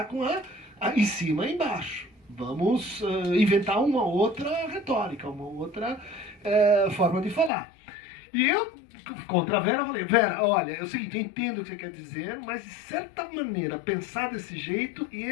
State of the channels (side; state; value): right; drops out; at 7.5 s